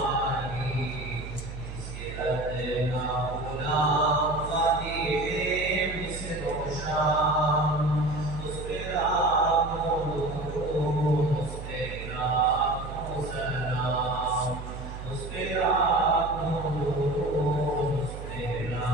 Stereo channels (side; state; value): right; noise; hum, 9 dB below the sound